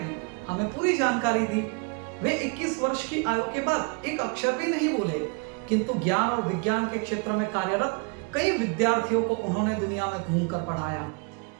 हमें पूरी जानकारी दी। वे 21 वर्ष की आयु के बाद एक अक्षर भी नहीं बोले, किंतु ज्ञान और विज्ञान के क्षेत्र में कार्यरत कई विद्यार्थियों को उन्होंने दुनिया में घूमकर पढ़ाया।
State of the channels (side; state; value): left; quieter; 33.8 dB